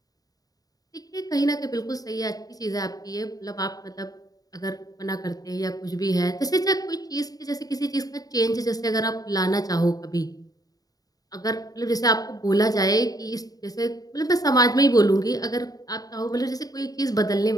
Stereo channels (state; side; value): late; right; 0.18 ms